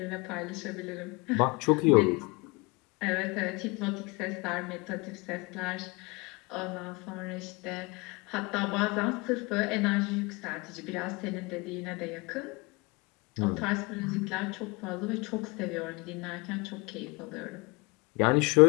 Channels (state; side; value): quieter; right; 26.6 dB